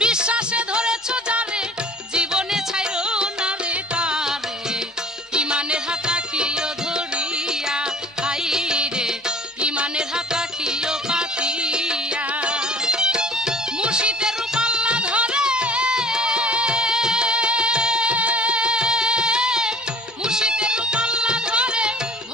বিশ্বাসে ধরেছ যারে জীবনে ছাইরো না রে তারে ইমানের হাত রাখিও ধরিয়া হাই রে ইমানের হাত রাখিও পাতিয়া মুর্শিদের রূপ আল্লাহ ধরে মুর্শিদের রূপ আল্লাহ ধরে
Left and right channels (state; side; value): normal; both; correlation 0.48